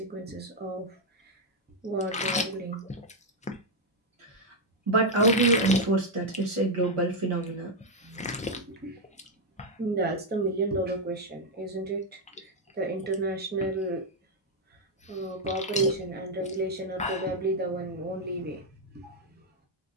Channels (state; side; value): normal; both; correlation 0.00